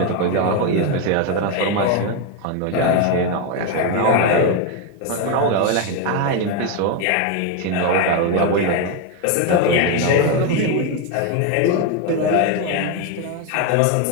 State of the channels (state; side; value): different; both; correlation 0.02